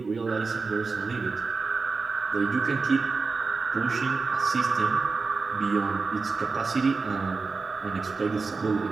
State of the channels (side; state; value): left; quieter; 4.3 dB